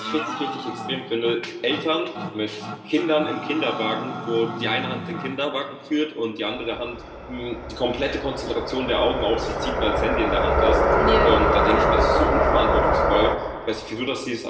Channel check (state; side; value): identical; both; correlation 1.00